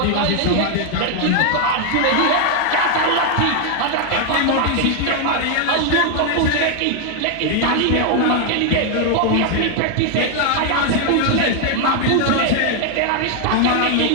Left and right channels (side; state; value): both; different; correlation 0.00